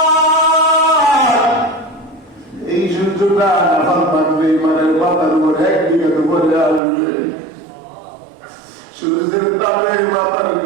এই সূর্যটা নাফাল থাকবে ইমানের মাথার উপরে একদিকে তো বলে আসবে সূর্যের তাপে মাথার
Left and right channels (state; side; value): drops out; left; at 6.8 s